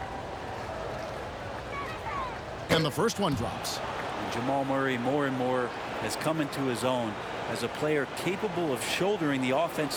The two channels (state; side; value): identical; both; correlation 1.00